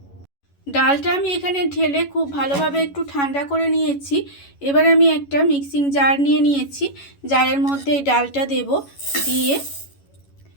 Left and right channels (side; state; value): right; late; 11 ms